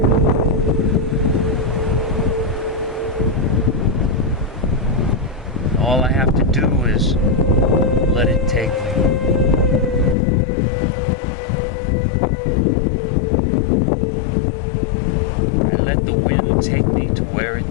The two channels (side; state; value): right; drops out; at 10.2 s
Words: All I have to do is let it take me. I let the wind take me to where